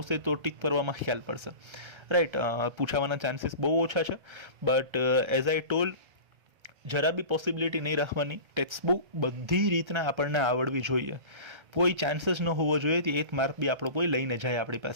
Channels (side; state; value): left; late; 1.3 ms